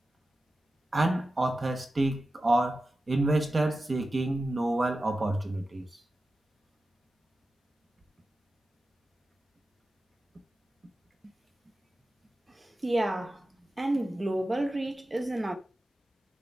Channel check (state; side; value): normal; both; correlation 0.93